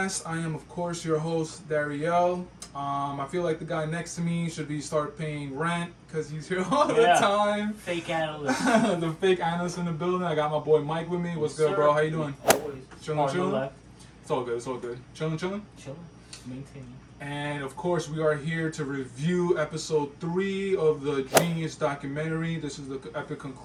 I am, of course, your host, Dariel. I feel like the guy next to me should start paying rent because he's here all the time. Fake analyst. The fake analyst in the building. I got my boy Mike with me. What's good, bro? How you doing? Always. Chilling? It's all good. It's all good. Chilling? Chilling. Maintaining. And of course, we are here to review episode 3 of the JEEN-YUHS documentary. This is the epic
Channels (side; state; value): both; identical; correlation 1.00